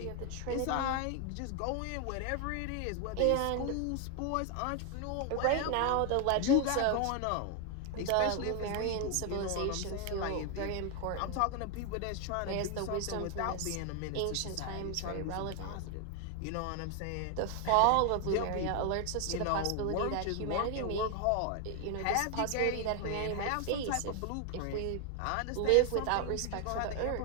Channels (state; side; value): different; both; correlation 0.01